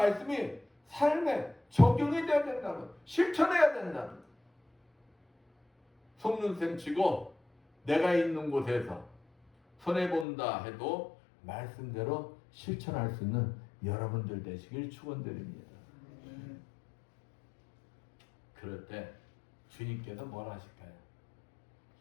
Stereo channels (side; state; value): right; drops out; at 10.2 s